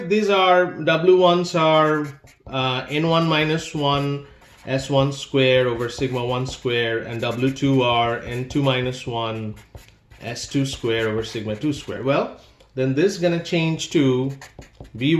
these are, W1s are N1 minus 1 S1 square over sigma 1 square, and W2 are N2 minus 1 S2 square over sigma 2 square? Well, then this is going to change to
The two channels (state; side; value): identical; both; correlation 1.00